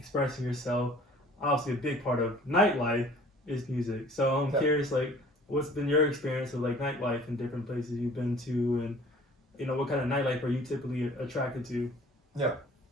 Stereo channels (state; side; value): normal; both; correlation 0.50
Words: yourself, obviously a big part of nightlife is music. So I'm curious, like, what's been your experience of like nightlife in different places you've been to, and, you know, what kind of nightlife are you typically attracted to? Yeah,